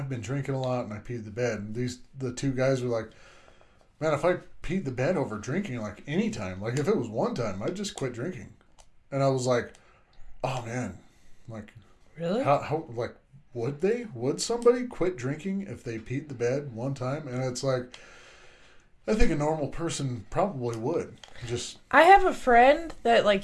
been drinking a lot and I peed the bed. And the 2 guys were like, man, if I peed the bed over drinking like any time, like if it was one time, I'd just quit drinking. And I was like, oh man, like really? How like would somebody quit drinking if they peed the bed one time? And it's like, I think a normal person probably would. I have a friend that like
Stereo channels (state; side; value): identical; both; correlation 1.00